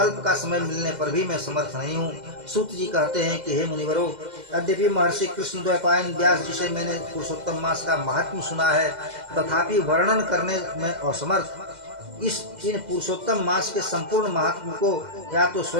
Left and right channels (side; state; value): left; late; 2.0 ms